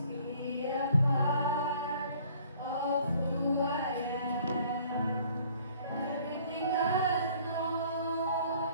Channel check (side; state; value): both; inverted; correlation -0.56